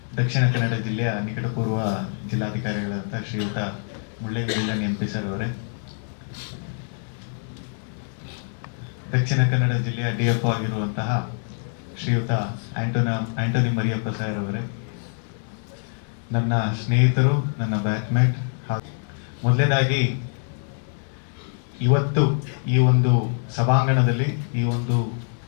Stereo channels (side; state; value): right; silent; digital silence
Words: ದಕ್ಷಿಣ ಕನ್ನಡ ಜಿಲ್ಲೆಯ ನಿಕಟಪೂರ್ವ ಜಿಲ್ಲಾಧಿಕಾರಿಗಳಂತ ಶ್ರೀಯುತ ಮುಳ್ಳಯ್ಯನಗಿರಿ MP ಸರ್ ಅವರೇ, ದಕ್ಷಿಣ ಕನ್ನಡ ಜಿಲ್ಲೆಯ DFO ಆಗಿರುವಂತಹ ಶ್ರೀಯುತ ಆಂಟೋನಿ ಮರಿಯಪ್ಪ ಸರ್ ಅವರೇ, ನನ್ನ ಸ್ನೇಹಿತರು, ನನ್ನ ಬ್ಯಾಚ್ಮೇಟ್, ಮೊದಲನೇದಾಗಿ ಇವತ್ತು ಈ ಒಂದು ಸಭಾಂಗಣದಲ್ಲಿ ಈ ಒಂದು